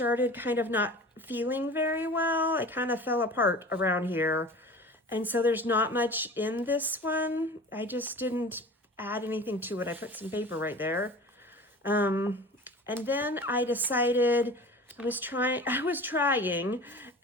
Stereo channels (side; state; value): both; normal; correlation 0.38